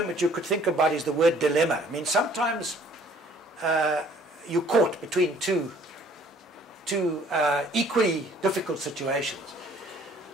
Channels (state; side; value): normal; both; correlation 0.57